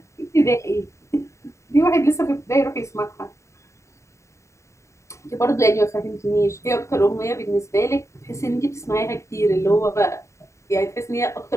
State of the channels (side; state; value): right; late; 0.14 ms